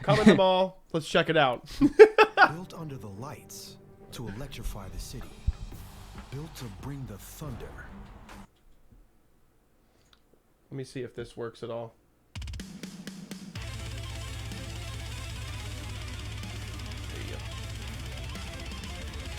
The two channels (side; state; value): both; identical; correlation 1.00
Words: Come in the mall. Let's check it out. Built under the lights to electrify the city. Built to bring the thunder. Let me see if this works at all.